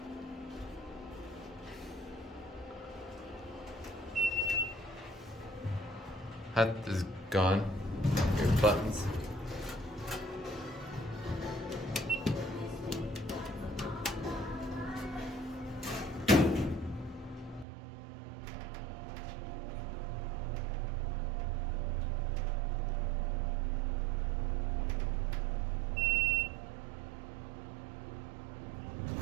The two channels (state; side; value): drops out; left; at 17.7 s